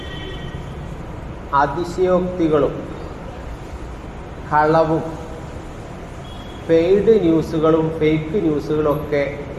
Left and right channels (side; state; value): both; identical; correlation 1.00